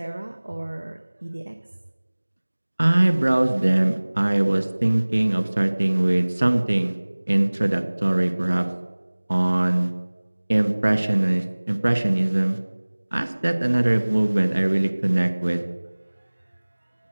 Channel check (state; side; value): inverted; both; correlation -1.00